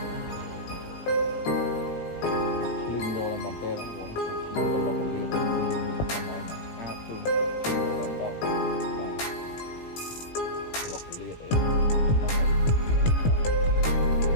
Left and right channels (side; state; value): right; late; 18 ms